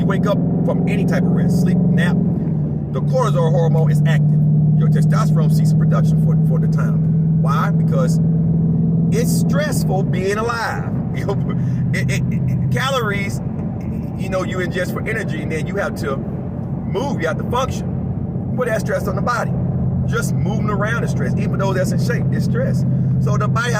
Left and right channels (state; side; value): identical; both; correlation 1.00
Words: wake up from any type of rest, sleep, nap, the cortisol hormone is active. Your testosterone ceases production for the time. Why? Because it's stressful being alive. you know, you ingest for energy, and then you have to move, you have to function. Put that stress on the body. Just moving around is stress. Even though that's in shape, it's stress. So the body